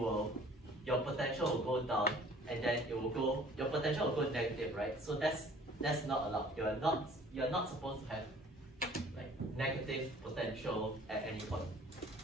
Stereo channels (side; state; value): both; normal; correlation 0.51